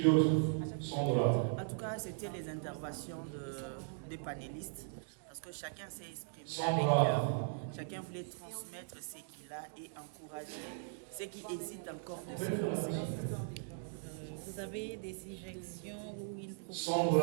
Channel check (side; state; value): left; silent; digital silence